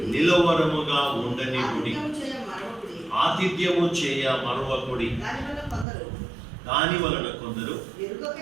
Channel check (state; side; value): drops out; left; at 5.9 s